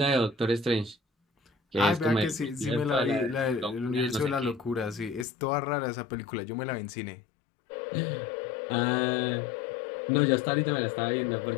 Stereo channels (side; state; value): right; drops out; at 5.2 s